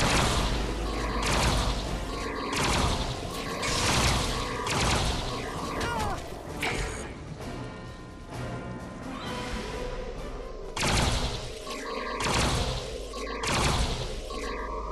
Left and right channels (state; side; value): identical; both; correlation 1.00